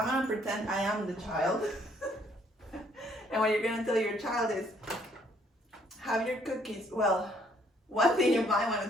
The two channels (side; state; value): both; normal; correlation 0.65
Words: gonna pretend I am the child. And what you're gonna tell your child is, have your cookies. Well, one thing you might wanna